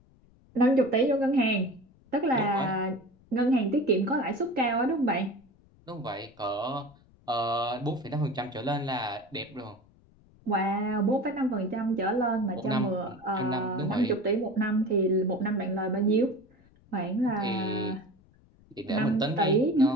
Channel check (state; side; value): noise; left; rumble, 29 dB below the sound